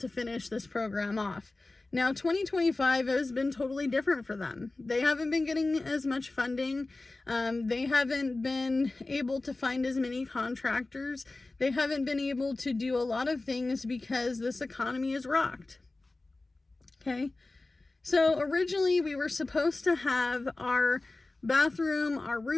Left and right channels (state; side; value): quieter; right; 3.2 dB